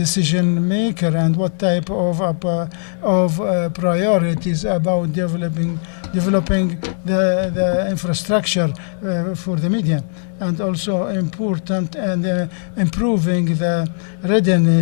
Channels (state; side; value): silent; right; digital silence